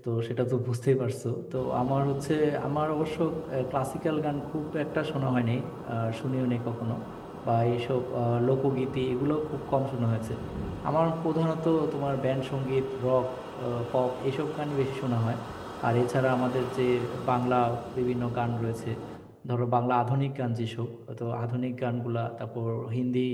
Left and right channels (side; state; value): both; identical; correlation 1.00